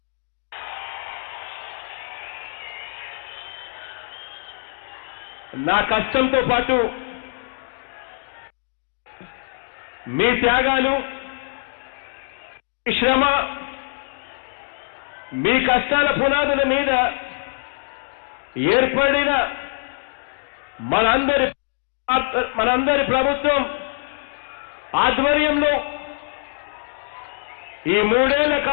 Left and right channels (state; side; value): silent; right; digital silence